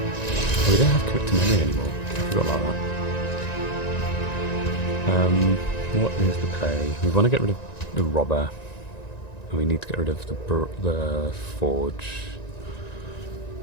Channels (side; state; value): right; late; 1.9 ms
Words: Oh, we don't have commit to memory anymore. I forgot about that. What is the play? We want to get rid of the robber, and we need to get rid of the forge.